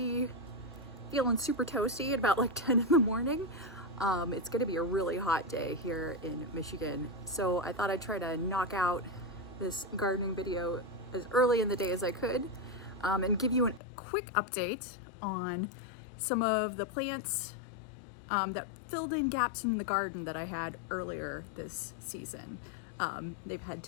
feeling super toasty at about like 10 in the morning. It's gonna be a really hot day here in Michigan. So I thought I'd try to knock out this gardening video as early in the day as I could and give you a quick update on some of the plants that filled in gaps in the garden that I had earlier this season. They've had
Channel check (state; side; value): drops out; right; at 13.8 s